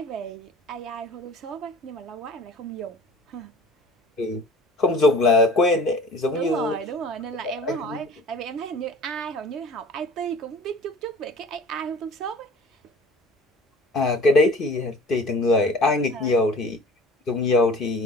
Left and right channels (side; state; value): both; normal; correlation 0.45